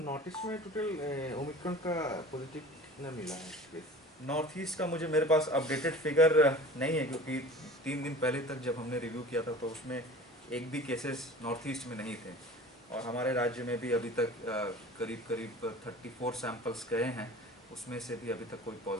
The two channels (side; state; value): both; normal; correlation 0.41